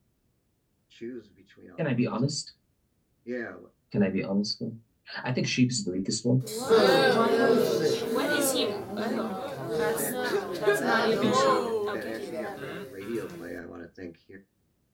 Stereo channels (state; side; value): identical; both; correlation 1.00